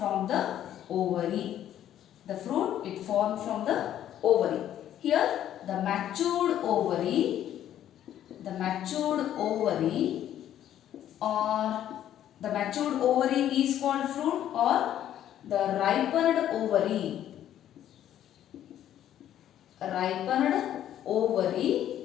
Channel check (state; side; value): quieter; right; 11.3 dB